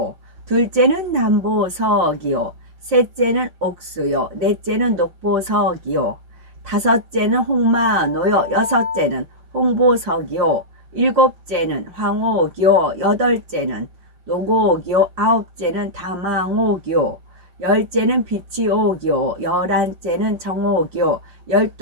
둘째는 남보석이요, 셋째는 옥수요, 넷째는 녹보석이요, 다섯째는 홍마노요, 여섯째는 홍보석이요, 일곱째는 황옥이요, 여덟째는 노곡이요, 아홉째는 다망옥이요, 열째는 비치옥이요, 열한째는 정옥이요,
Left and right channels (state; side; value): late; left; 5.6 ms